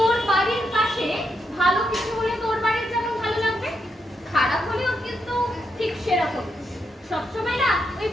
বাড়ির পাশে ভালো কিছু হলে তোর বাড়ির যেমন ভালো লাগবে, খারাপ হলেও কিন্তু ঠিক সেরকম। সবসময় না ওই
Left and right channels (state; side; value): normal; both; correlation 0.81